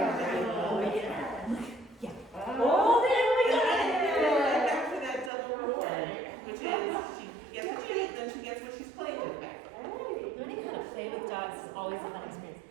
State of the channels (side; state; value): left; drops out; at 5.3 s